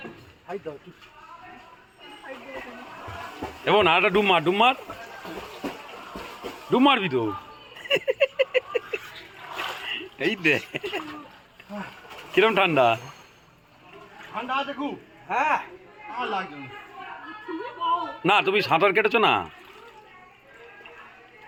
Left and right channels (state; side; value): identical; both; correlation 1.00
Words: এবং আরেকটা ডুব মার, ডুব মার, ডুব মারবি তো। এই দে কিরম ঠান্ডা? ঠান্ডা আছে খুব। হ্যাঁ আমার লাগছে না। না তুমি সাঁতার কেটেছো না?